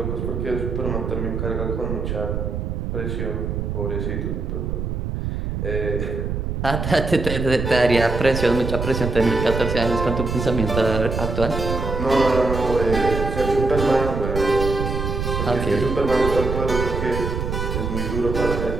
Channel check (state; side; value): noise; right; rumble, 3 dB below the sound